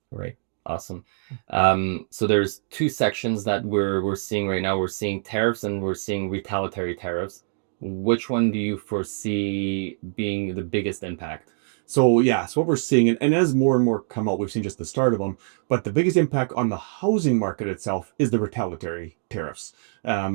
Right. Awesome. So there's two sections that we're seeing right now. We're seeing tariffs and we're seeing retaliatory tariffs. Which one do you foresee being the biggest impact? So yeah, so what we're seeing, and as more and more come out, we've seen just the start of them. But the biggest impact on the housing market itself is the retaliatory tariffs.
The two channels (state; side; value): silent; left; digital silence